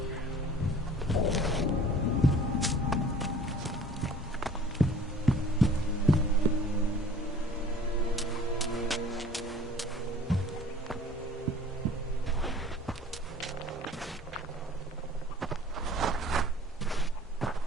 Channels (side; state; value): both; normal; correlation 0.48